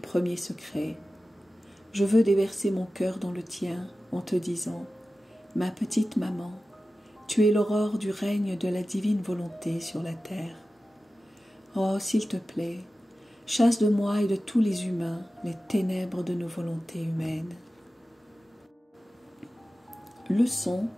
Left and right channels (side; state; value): both; normal; correlation 0.95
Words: secrets. Je veux déverser mon cœur dans le tien en te disant « Ma petite maman, tu es l'aurore du règne de la divine volonté sur la terre. Oh, s'il te plaît, chasse de moi et de tous les humains les ténèbres de nos volontés humaines. » Leçon